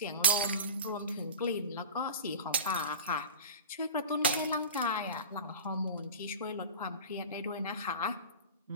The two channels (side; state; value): both; inverted; correlation -0.31